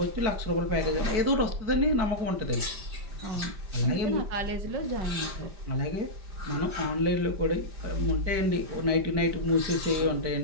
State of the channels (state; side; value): late; left; 5.1 ms